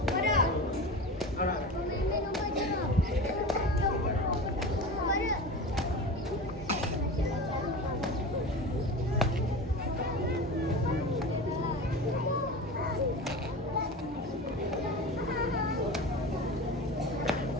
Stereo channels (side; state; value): both; normal; correlation 0.30